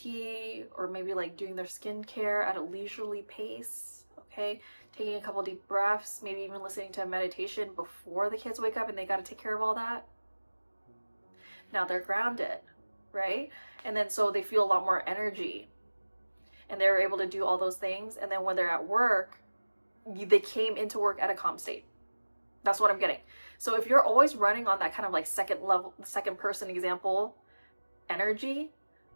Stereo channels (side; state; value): both; inverted; correlation -1.00